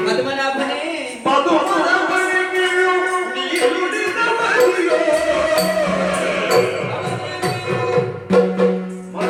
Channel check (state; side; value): identical; both; correlation 1.00